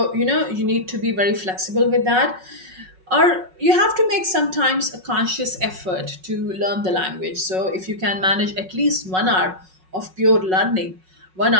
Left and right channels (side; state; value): left; late; 5.4 ms